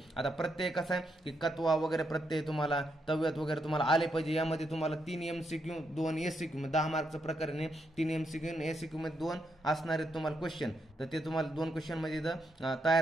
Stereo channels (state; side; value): normal; both; correlation 0.80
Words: आता प्रत्यय कसा आहे की कत्वा वगैरे प्रत्यय तुम्हाला तव्यत वगैरे तुम्हाला आले पाहिजे। यामध्ये तुम्हाला 3 MCQ 2 ACQ, 10 मार्कचं प्रकरण आहे। 3 MCQ आणि ACQ मध्ये 2 असणारे तुम्हाला क्वेश्चन, तर ते तुम्हाला 2 क्वेश्चन मध्ये